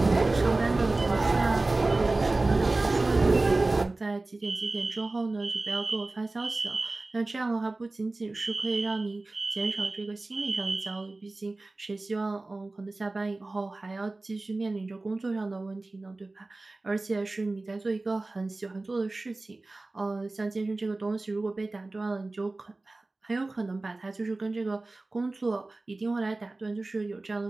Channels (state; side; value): quieter; left; 3.1 dB